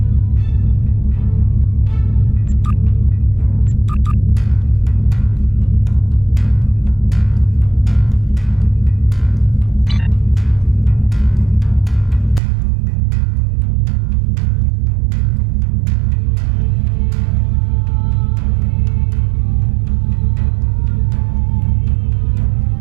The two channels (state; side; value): drops out; left; at 12.4 s